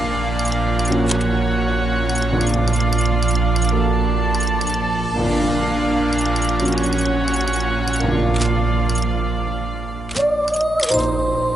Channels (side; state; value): both; normal; correlation 0.82